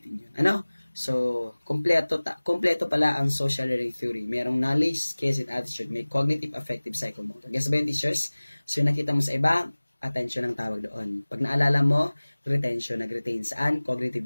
yun. So, kompleto pala ang social learning theory. Merong knowledge, skills, and attitude. May cognitive, affective, psychomotor. Guess ba yung teachers? So, yung nakita mo sa iba, attention ang tawag doon. Pag naalala mo, retention, nag-retain. Saan?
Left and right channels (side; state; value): both; inverted; correlation -1.00